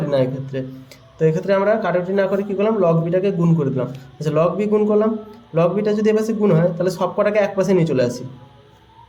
না এক্ষেত্রে। তো এক্ষেত্রে আমরা কাটাকুটি না করে কী করলাম, লগ বিটাকে গুণ করে দিলাম। আচ্ছা, লগ বি গুণ করলাম, লগ বিটা যদি এপাশে গুণ হয় তাহলে সব কটাকে এক পাশে নিয়ে চলে আসি,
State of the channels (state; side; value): identical; both; correlation 1.00